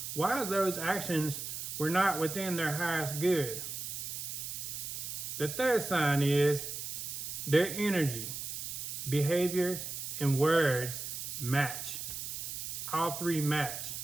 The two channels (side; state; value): right; noise; hiss, 6 dB below the sound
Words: why those actions were not within their highest good. The third sign is their energy, behavior, and words match. All 3 match.